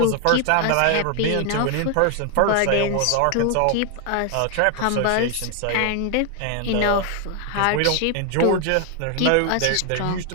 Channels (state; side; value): different; both; correlation 0.00